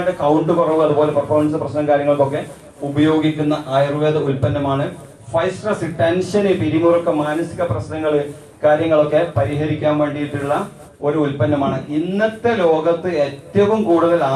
കൗണ്ട് കുറവ്, അതുപോലെ പെർഫോമൻസ് പ്രശ്നം കാര്യങ്ങൾക്കൊക്കെ ഉപയോഗിക്കുന്ന ആയുർവേദ ഉൽപ്പന്നമാണ് ഫൈസ്ട്രസ്. ടെൻഷന്, പിരിമുറുക്കം, മാനസിക പ്രശ്നങ്ങൾ കാര്യങ്ങളൊക്കെ പരിഹരിക്കാൻ വേണ്ടിയിട്ടുള്ള ഒരു ഉൽപ്പന്നമാണ്. ഇന്നത്തെ ലോകത്ത് ഏറ്റവും കൂടുതൽ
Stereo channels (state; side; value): identical; both; correlation 1.00